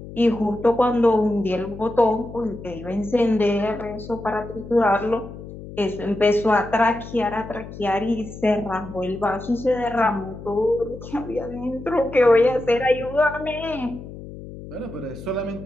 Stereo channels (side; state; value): left; noise; hum, 13 dB below the sound